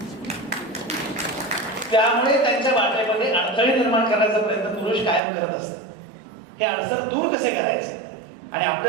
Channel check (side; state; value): left; drops out; at 5.2 s